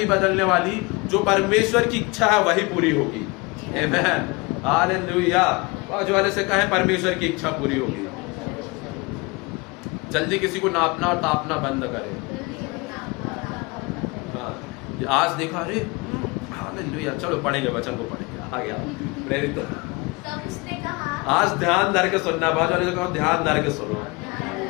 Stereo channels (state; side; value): quieter; right; 26.2 dB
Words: बदलने वाली। जो परमेश्वर की इच्छा है वही पूरी होगी। आमेन, हालेलुया। बाजू वाले से कहे परमेश्वर की इच्छा पूरी होगी। जल्दी किसी को नापना और तापना बंद करे। हाँ, आज देखा, अरे हालेलुया, चलो पढ़ेंगे, वचन को पढ़ेंगे। आ गया प्रेरित। आज ध्यान धर के सुनना, बाजू वाले से कहो ध्यान धर के सुनो,